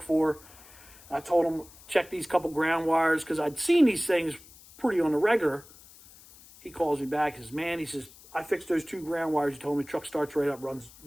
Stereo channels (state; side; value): noise; left; hiss, 22 dB below the sound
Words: for. I told him, check these couple ground wires, because I'd seen these things pretty on the regular. He calls me back. He says, man, I fixed those 2 ground wires. He told me truck starts right up,